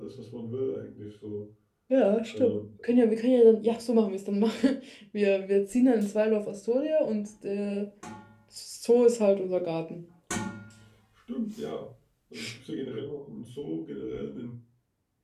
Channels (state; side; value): identical; both; correlation 1.00